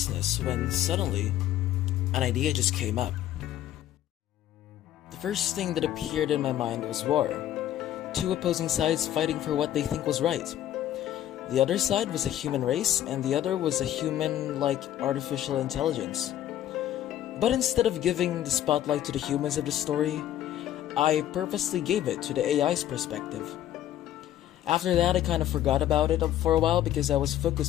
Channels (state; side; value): quieter; right; 12.2 dB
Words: when suddenly, an idea just came up. The first thing that appeared in my mind was war. Two opposing sides fighting for what they think was right. The other side was a human race, and the other was a human-like artificial intelligence. But instead of giving the spotlight to the humans of the story, I purposely gave it to the AI's perspective. After that, I kind of forgot about it for a while because I was